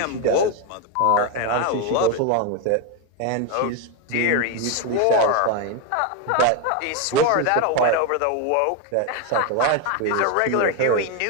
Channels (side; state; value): both; different; correlation 0.02